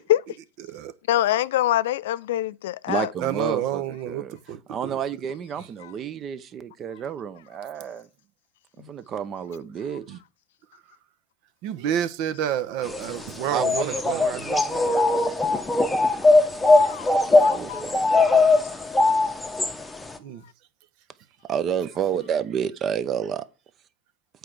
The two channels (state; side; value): normal; both; correlation 0.63